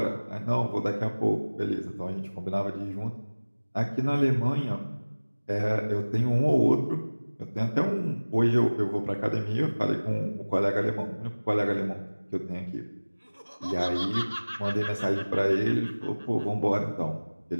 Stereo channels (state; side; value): inverted; both; correlation -1.00